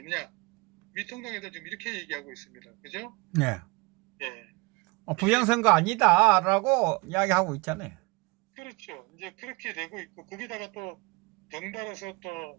미통당 애들 지금 이렇게 얘기하고 있습니다. 그죠? 네. 예. 부정선거 아니다라고 이야기하고 있잖아요. 그렇죠. 이제 그렇게 되고 있고 거기다가 또 덩달아서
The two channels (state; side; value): quieter; left; 26.1 dB